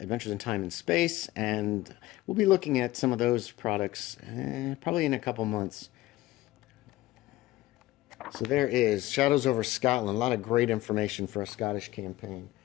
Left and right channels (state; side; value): quieter; right; 17.3 dB